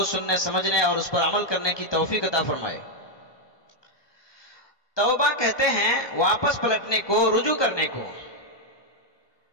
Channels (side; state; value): right; late; 1.2 ms